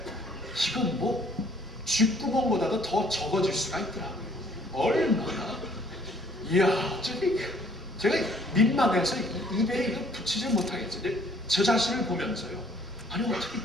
이건 뭐 쥐구멍보다도 더 적어질 수가 있더라고요. 얼마나, 이야, 제가 민망해서 입에 이거 붙이질 못하겠어요. 저 자신을 보면서요, 아니 어떻게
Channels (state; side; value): normal; both; correlation 0.60